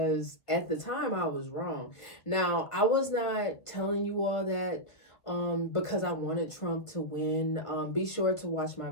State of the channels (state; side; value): late; right; 1.7 ms